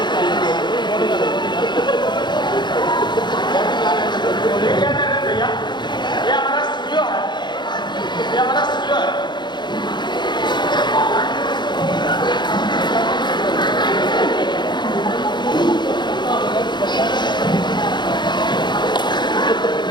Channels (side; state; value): right; late; 0.21 ms